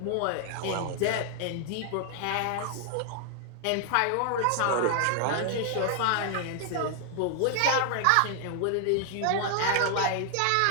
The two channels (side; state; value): both; different; correlation 0.00